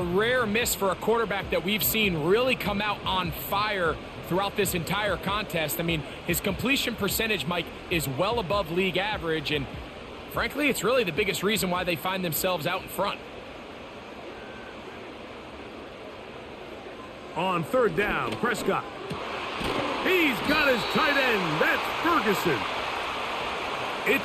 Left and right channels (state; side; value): identical; both; correlation 1.00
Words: rare miss for a quarterback that we've seen really come out on fire throughout this entire contest. I mean, his completion percentage, Mike, is well above league average, and frankly, it's really the biggest reason why they find themselves out in front. On 3rd down, Prescott. He's got his tight end. That's Ferguson.